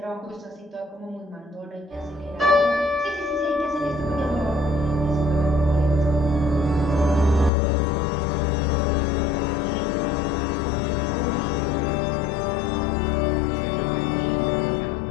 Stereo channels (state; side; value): drops out; right; at 7.5 s